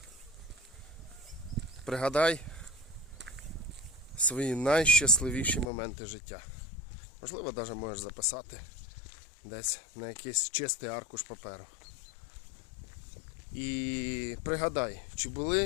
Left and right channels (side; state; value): right; drops out; at 5.7 s